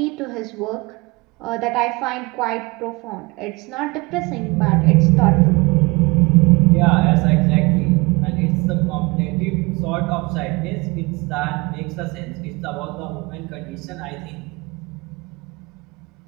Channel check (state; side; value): quieter; left; 25.1 dB